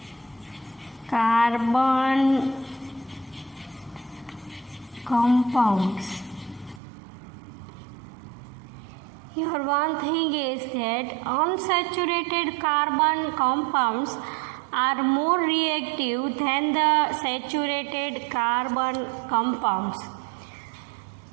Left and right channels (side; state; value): left; drops out; at 6.8 s